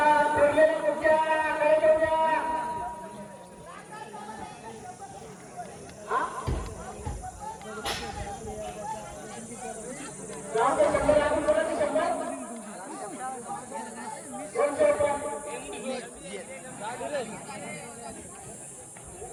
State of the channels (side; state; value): both; identical; correlation 1.00